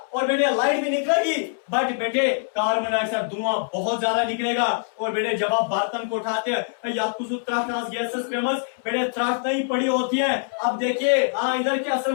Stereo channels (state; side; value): silent; right; 62 dB below the other